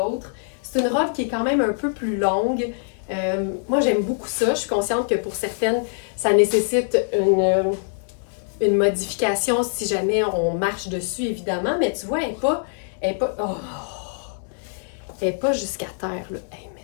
C'est une robe qui est quand même un peu plus longue, Moi, j'aime beaucoup ça. Je suis consciente que pour certaines, ça nécessite une modification si jamais on marche dessus, évidemment. Mais tu vois, elle est pas jusqu'à terre, là. Hey,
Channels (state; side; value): silent; right; digital silence